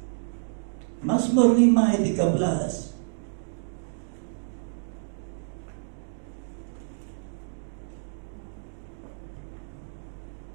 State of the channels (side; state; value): left; silent; digital silence